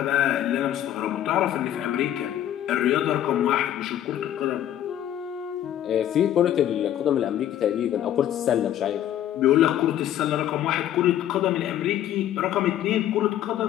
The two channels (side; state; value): right; quieter; 11.6 dB